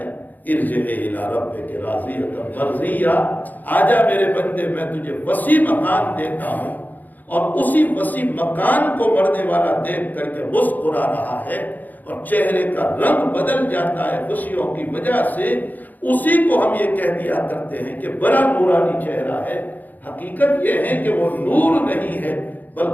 ارجع الی ربک راضیۃ مرضیہ، آجا میرے بندے میں تجھے وسیع مکان دیتا ہوں۔ اور اسی وسیع مکان کو مرنے والا دیکھ کر کے مسکرا رہا ہے اور چہرے کا رنگ بدل جاتا ہے خوشیوں کی وجہ سے، اسی کو ہم یہ کہہ دیا کرتے ہیں کہ بڑا نورانی چہرہ ہے۔ حقیقت یہ ہے کہ وہ نور نہیں ہے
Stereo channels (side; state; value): right; late; 0.083 ms